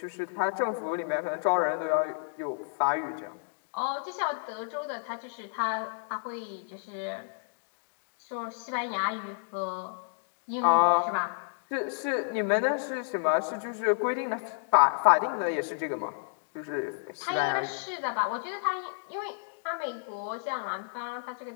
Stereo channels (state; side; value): silent; right; digital silence